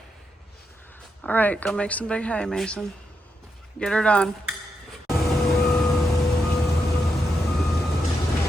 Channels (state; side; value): normal; both; correlation 0.84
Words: All right, go make some big hay, Mason. Get her done.